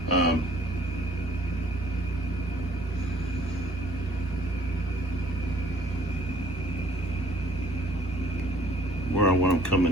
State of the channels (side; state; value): both; normal; correlation 0.58